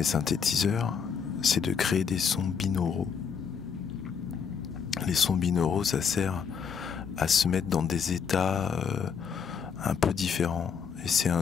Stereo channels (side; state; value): right; quieter; 6.7 dB